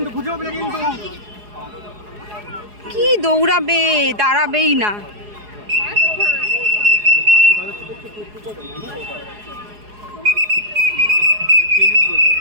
খুঁজে পাবে না কিন্তু। কি দৌড়াবে, দাঁড়াবেই না।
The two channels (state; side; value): late; left; 4.8 ms